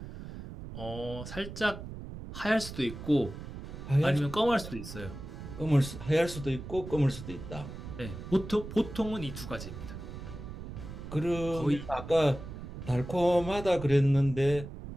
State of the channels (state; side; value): noise; right; rumble, 10 dB below the sound